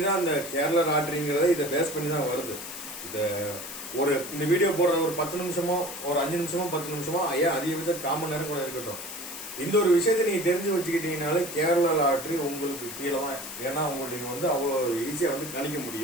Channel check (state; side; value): noise; left; hiss, 10 dB below the sound